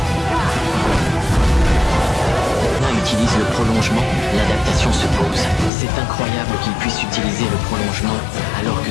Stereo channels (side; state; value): right; drops out; at 5.7 s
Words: On utilise le prolongement, l'adaptation se pose. C'est incroyable qu'il puisse utiliser le prolongement alors que